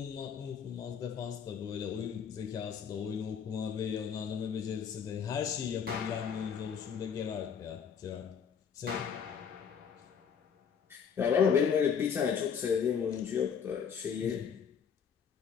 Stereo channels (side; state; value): right; quieter; 7.1 dB